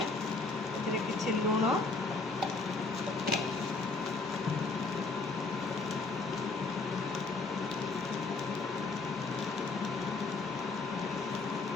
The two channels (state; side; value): quieter; right; 3.7 dB